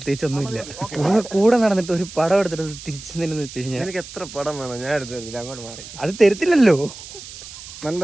കൂടെ നടന്നിട്ട് ഒരു പടം എടുത്തിട്ട് തിരിച്ചു നിന്നെന്ന് വെച്ച് കഴിഞ്ഞാൽ എനിക്ക് എത്ര പടം വേണം, ഞാൻ എടുത്തില്ല, അങ്ങോട്ട് മാറി. അത് തരത്തില്ലല്ലോ.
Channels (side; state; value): right; noise; hiss, 14 dB below the sound